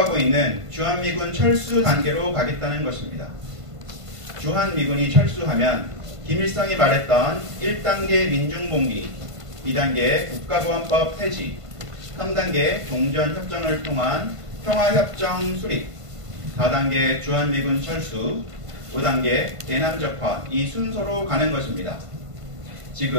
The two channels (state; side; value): late; left; 1.5 ms